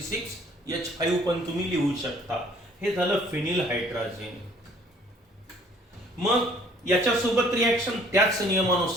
पण तुम्ही लिहू शकता. हे झालं फिनिल हायड्रोजन. मग याच्यासोबत रिएक्शन त्याच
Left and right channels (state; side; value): normal; both; correlation 0.57